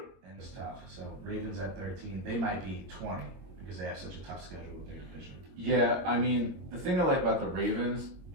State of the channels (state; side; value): late; left; 22 ms